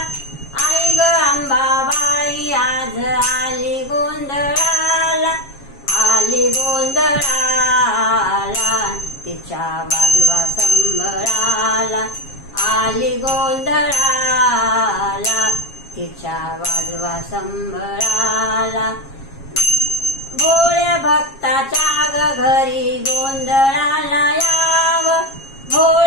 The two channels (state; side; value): late; right; 7.4 ms